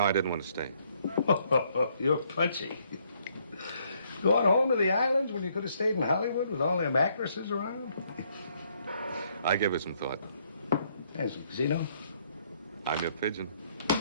I didn't want to stay. You're punchy. Going home to the islands when you could have stayed in Hollywood with all them actresses around? I gave it some thought. There's a casino. I'm your pigeon.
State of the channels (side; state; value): both; inverted; correlation -0.69